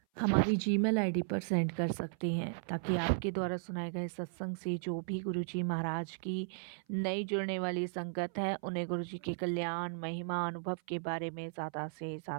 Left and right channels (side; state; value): left; silent; 54 dB below the other